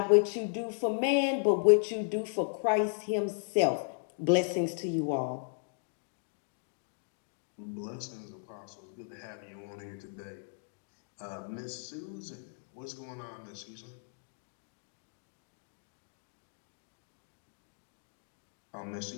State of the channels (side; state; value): right; silent; digital silence